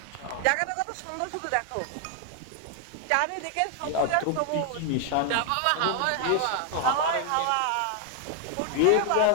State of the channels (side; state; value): both; different; correlation 0.00